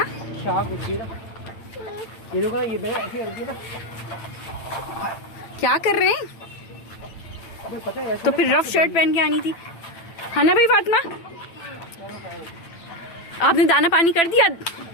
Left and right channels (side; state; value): right; late; 8.9 ms